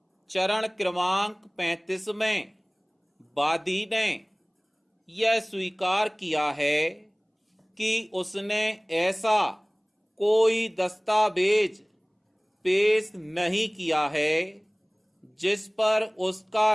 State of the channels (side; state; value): both; identical; correlation 1.00